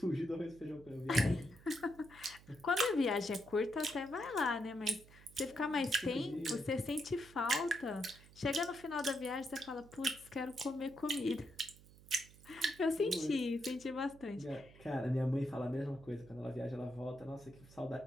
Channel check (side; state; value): right; noise; hum, 22 dB below the sound